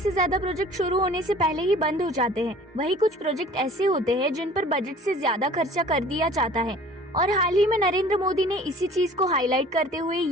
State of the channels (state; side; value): normal; both; correlation 0.48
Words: ज्यादा प्रोजेक्ट शुरू होने से पहले ही बंद हो जाते हैं। वही कुछ प्रोजेक्ट ऐसे होते हैं जिन पर बजट से ज्यादा खर्चा कर दिया जाता है। और हाल ही में नरेंद्र मोदी ने इसी चीज को हाईलाइट करते हुए